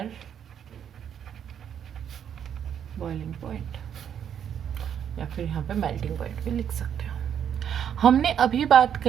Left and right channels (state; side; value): quieter; left; 8.8 dB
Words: boiling point, या फिर यहाँ पे मेल्टिंग पॉइंट भी लिख सकते हो। हमने अभी बात